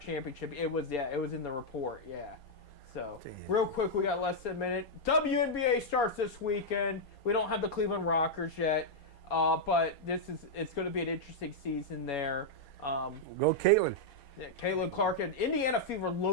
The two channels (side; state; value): right; late; 4.3 ms